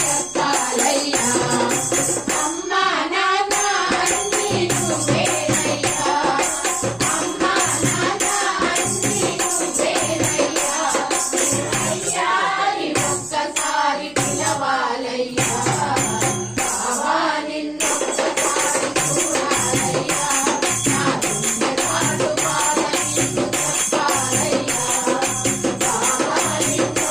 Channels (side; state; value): left; noise; hum, 29 dB below the sound